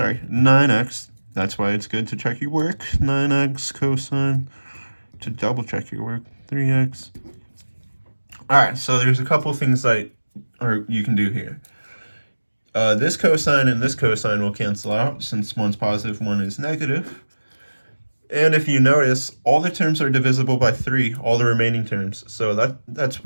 That's why it's good to check your work. 9x cosine, to double check your work, 3x. All right, so there's a couple things you can do here. This cosine and this cosine will cancel out since one's positive, one is negative. And if you notice, all the terms are divisible by 3, all the remaining terms. So that's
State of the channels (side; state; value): both; inverted; correlation -1.00